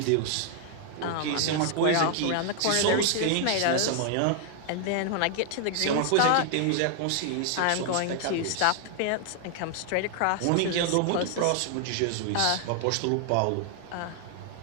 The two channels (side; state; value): both; different; correlation 0.00